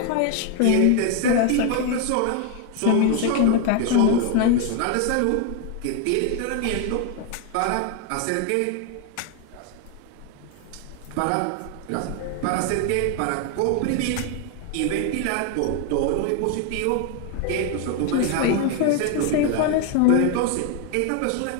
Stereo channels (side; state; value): both; different; correlation 0.01